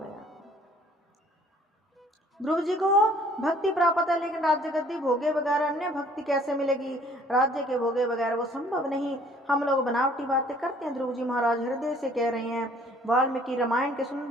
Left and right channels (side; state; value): both; normal; correlation 0.57